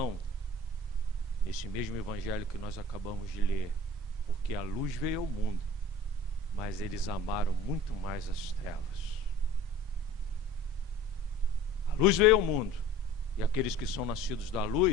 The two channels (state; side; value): normal; both; correlation 0.44